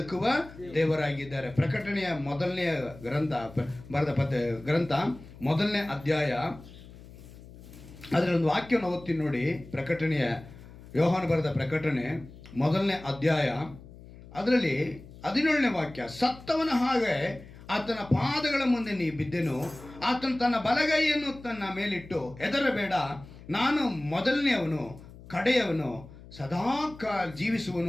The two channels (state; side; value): noise; left; hum, 18 dB below the sound